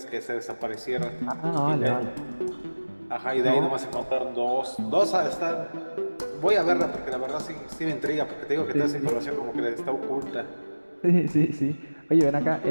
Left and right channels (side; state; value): both; inverted; correlation -1.00